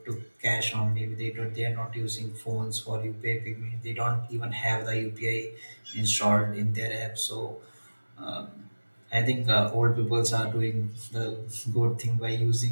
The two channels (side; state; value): both; inverted; correlation -1.00